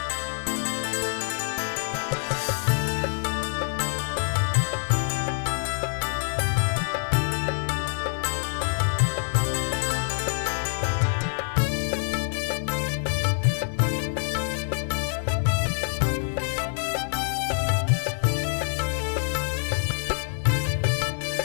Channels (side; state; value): right; silent; digital silence